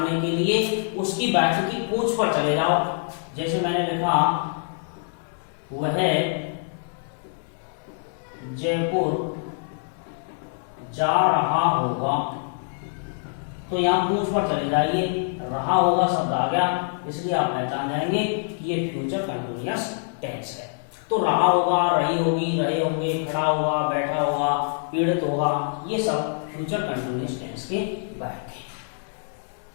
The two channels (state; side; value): silent; right; digital silence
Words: के लिए उसकी वाक्य की पूंछ पर चले जाओ। जैसे मैंने लिखा, वह जयपुर जा रहा होगा, तो यहां पूंछ पर चले जाइए, रहा होगा शब्द आ गया, इसलिए आप पहचान जाएंगे कि ये फ्यूचर कंटिन्यूअस टेंस है। तो रहा होगा, रही होगी, रहे होंगे, खड़ा होगा, बैठा होगा, पीड़ित होगा, ये सब फ्यूचर कंटिन्यूअस टेंस के वाक्य हैं।